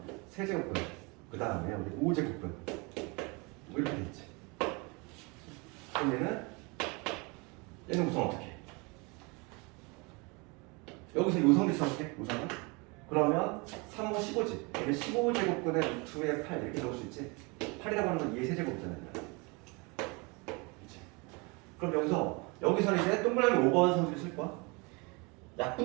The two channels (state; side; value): quieter; left; 28.7 dB